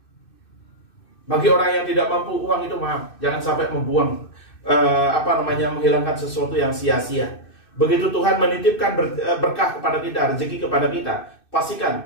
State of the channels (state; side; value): late; right; 2.6 ms